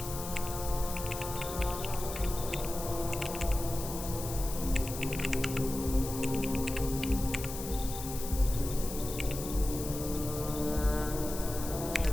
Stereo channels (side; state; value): left; noise; hiss, 9 dB below the sound